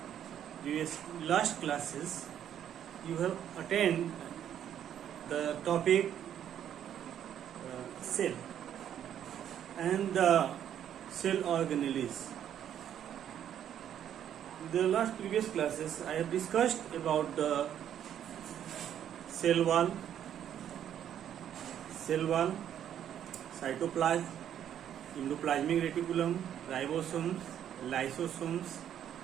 classes you have attended the topic cell and the cell organelles. The last previous classes I have discussed about the cell wall, cytoplasm, endoplasmic reticulum, ribosomes, lysosomes,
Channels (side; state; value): left; quieter; 10.0 dB